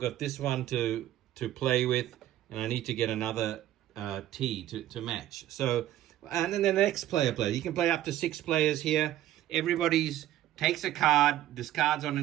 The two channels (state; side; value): quieter; left; 13.2 dB